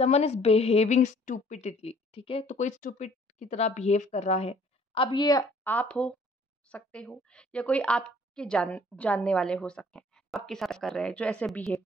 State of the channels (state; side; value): normal; both; correlation 0.57